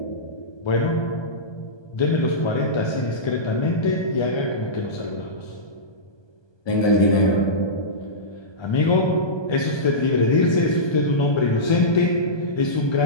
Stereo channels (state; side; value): late; right; 1.2 ms